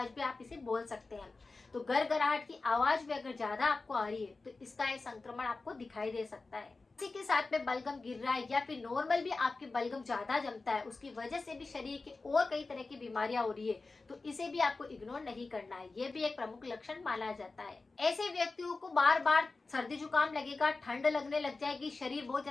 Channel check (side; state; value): right; quieter; 3.7 dB